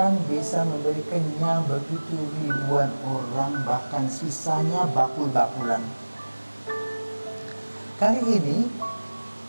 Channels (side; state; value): both; inverted; correlation -1.00